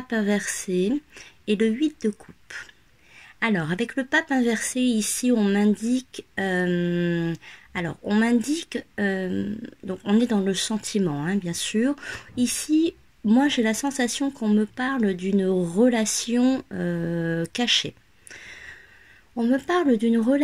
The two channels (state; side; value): identical; both; correlation 1.00